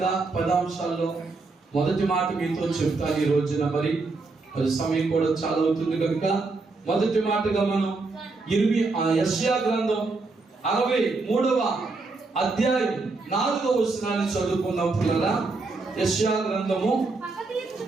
10 అంశాల్లో మొదటి మాట మీతో చెప్తాను ఈ రోజున. మరి సమయం కూడా చాలా అవుతుంది కనుక మొదటి మాటగా మనం యెషయా గ్రంథం 63వ అధ్యాయం 4వ వచనాన్ని చదువుకుందాం పిల్లరా. యెషయా గ్రంథము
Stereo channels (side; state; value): left; quieter; 3.7 dB